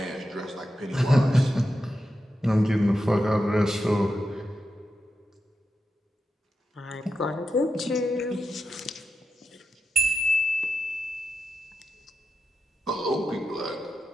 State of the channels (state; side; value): normal; both; correlation 0.89